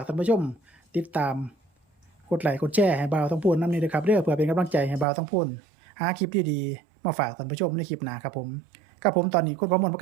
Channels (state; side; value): drops out; left; at 5.1 s